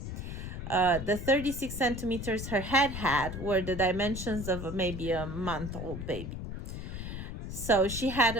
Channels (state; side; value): noise; left; rumble, 7 dB below the sound